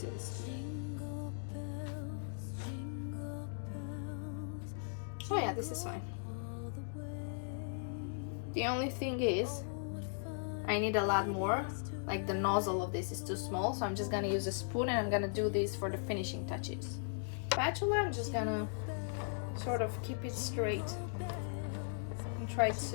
is. Jingle bells, Oh yeah, this is fine. The only thing is I need a lot more. Like the nozzle of this is too small, so I'm just gonna use a spoon and I'm gonna do this for the finishing touches. Spatula, I'm just gonna sort of keep it straight and try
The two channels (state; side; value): silent; right; digital silence